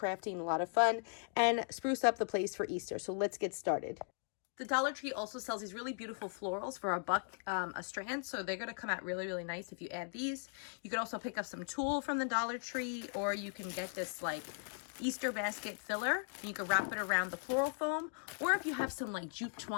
a lot of fun and spruce up the place for Easter. So let's get started. The Dollar Tree also sells these really beautiful florals for $1 a strand. So they're going to come out really, really nice if you add these. You could also pick up some tulle from the Dollar Tree, or you can get this like Easter basket filler. And you could wrap it around the floral foam. Or if you have some like jute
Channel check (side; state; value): right; silent; 52 dB below the other